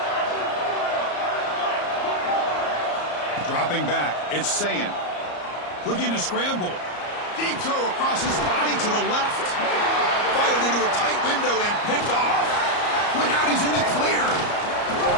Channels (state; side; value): late; right; 34 ms